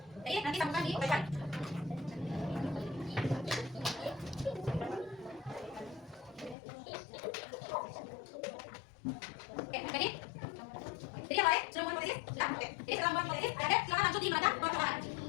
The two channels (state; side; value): drops out; right; at 6.6 s